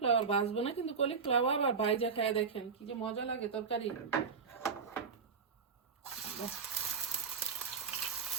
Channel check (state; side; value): quieter; left; 5.6 dB